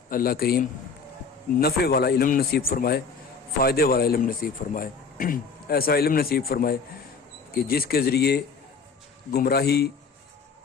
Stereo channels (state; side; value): quieter; right; 5.1 dB